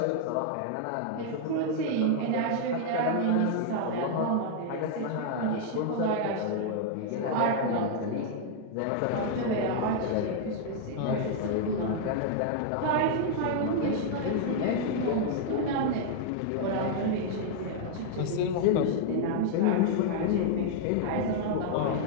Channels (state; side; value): different; both; correlation -0.01